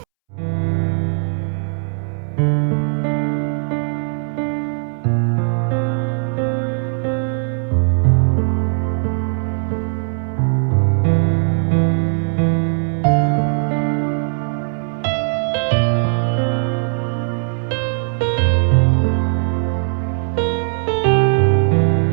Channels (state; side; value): silent; left; 67 dB below the other